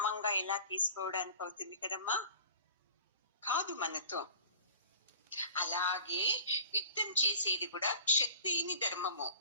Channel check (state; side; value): inverted; both; correlation -0.43